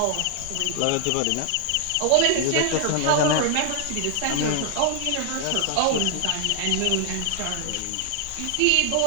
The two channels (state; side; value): different; both; correlation 0.00